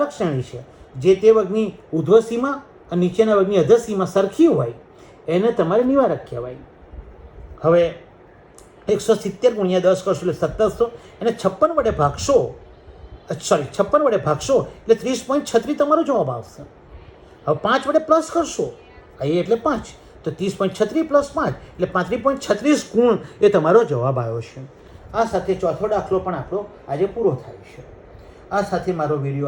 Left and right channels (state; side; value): identical; both; correlation 1.00